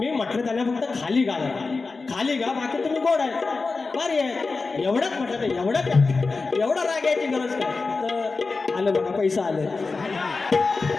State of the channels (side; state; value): right; quieter; 4.0 dB